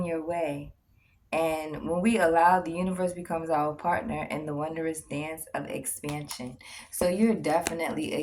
your way. And when we allow, the universe becomes our partner in the wondrous dance of expansion. So you're definitely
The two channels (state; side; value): identical; both; correlation 1.00